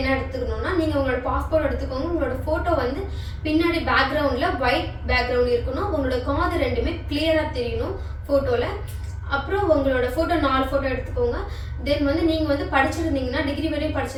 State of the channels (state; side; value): identical; both; correlation 1.00